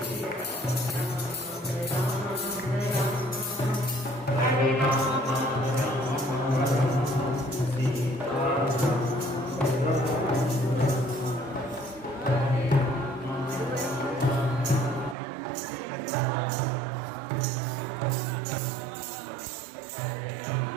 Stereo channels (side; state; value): left; drops out; at 15.2 s